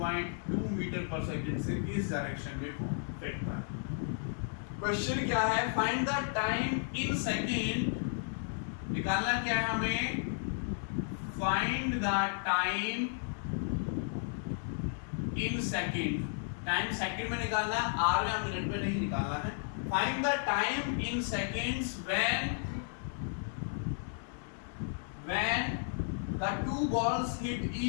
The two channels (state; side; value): silent; right; 55 dB below the other